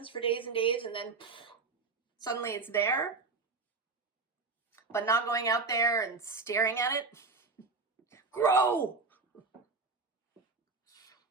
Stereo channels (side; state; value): left; quieter; 4.1 dB